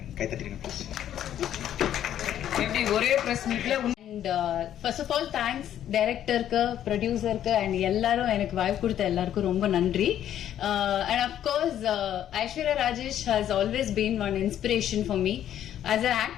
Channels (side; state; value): right; quieter; 10.9 dB